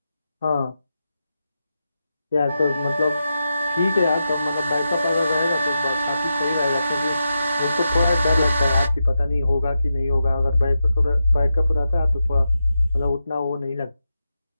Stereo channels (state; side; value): inverted; both; correlation -0.88